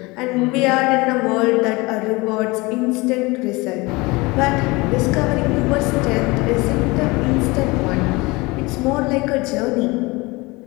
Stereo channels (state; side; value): quieter; right; 23.9 dB